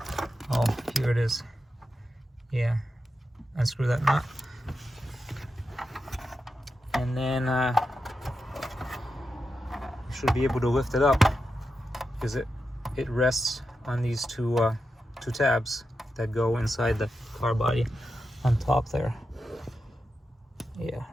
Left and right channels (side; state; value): both; normal; correlation 0.88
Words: Oh, here it is. Yeah, unscrew that nut. And then you should be able to lift it up, because it rests on these two tabs that go inside the car body on top there. Yeah,